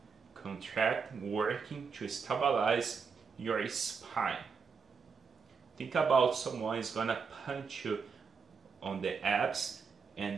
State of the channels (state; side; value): quieter; left; 5.6 dB